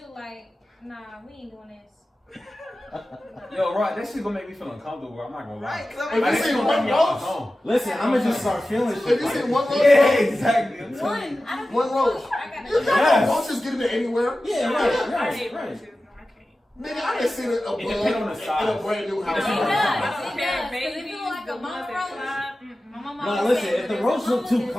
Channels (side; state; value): both; normal; correlation 0.95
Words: like, nah, we ain't doing this. Yo, right, that shit gonna make me feel uncomfortable. I'm not gonna lie. Right, 'cause If I'm you like, see gonna one make me off my roach, phone. Listen, I'm gonna just start feeling shit. if you see one roach, Yeah, exactly. I'm telling you. One. I don't One give a roach. fuck. I gotta You go. got Yes. roaches getting it anywhere. Yeah, I right, hate right. roaches. No, I can't. Nigga, I done seen a bug It depends on the in size. a brand new house. It does. I don't It care, does. 'Cause if babies, it look like the a ones mama that roach, fly. my mama No, always listen, said if the there's a roach mama, look too there's a